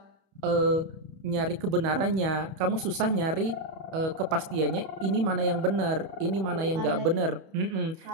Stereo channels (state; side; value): late; left; 31 ms